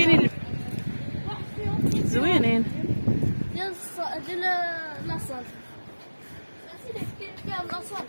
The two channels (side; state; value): both; inverted; correlation -1.00